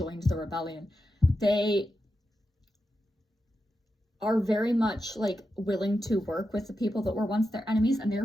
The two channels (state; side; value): normal; both; correlation 0.89